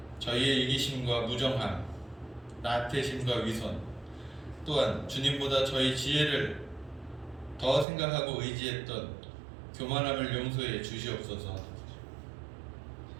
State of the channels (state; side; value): drops out; left; at 7.9 s